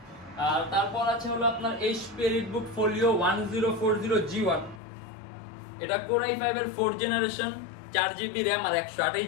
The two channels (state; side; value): drops out; right; at 4.8 s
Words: আর তারপর আছে হলো আপনার HP EliteBook Folio 1040G1। এটা Core i5 এর 4th জেনারেশন, 4GB RAM আর